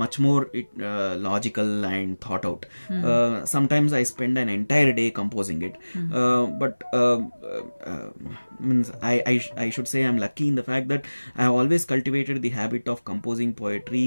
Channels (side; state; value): both; inverted; correlation -1.00